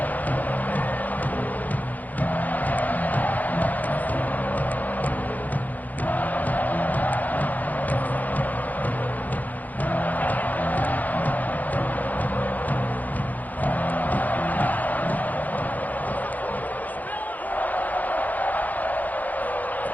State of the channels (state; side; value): late; right; 0.081 ms